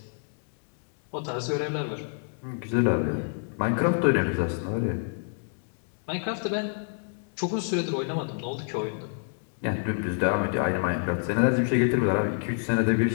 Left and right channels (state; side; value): silent; right; digital silence